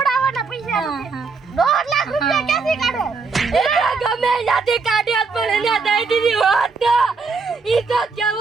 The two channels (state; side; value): quieter; left; 4.5 dB